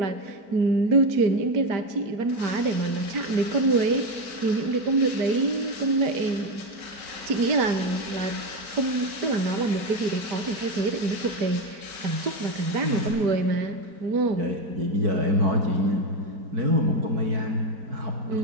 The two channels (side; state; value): left; late; 4.5 ms